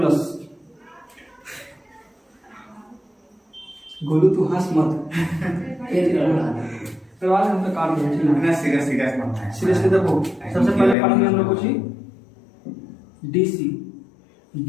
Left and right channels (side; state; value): right; drops out; at 11.0 s